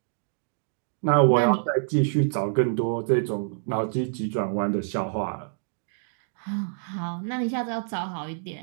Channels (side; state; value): left; silent; digital silence